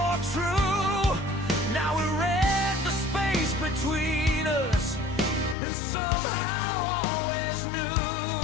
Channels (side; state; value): right; drops out; at 5.6 s